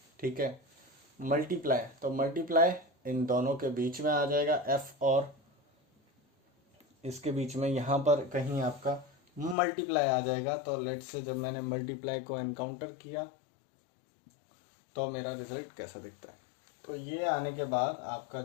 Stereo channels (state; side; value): drops out; right; at 9.6 s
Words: ठीक है, मल्टीप्लाई, तो मल्टीप्लाई इन दोनों के बीच में आ जाएगा f और इसके बीच में यहाँ पर कहीं आपका मल्टीप्लाई आ जाएगा। तो लेट्स से जब मैंने मल्टीप्लाई को एनकाउंटर किया तो मेरा रिजल्ट कैसा दिखता है। तो ये आने के बाद आपका